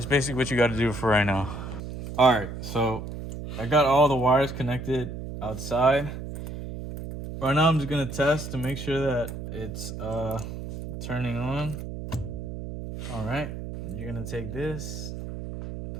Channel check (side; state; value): right; noise; hum, 8 dB below the sound